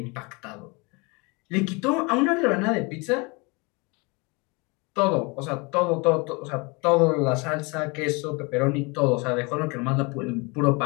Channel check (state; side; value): quieter; right; 28.3 dB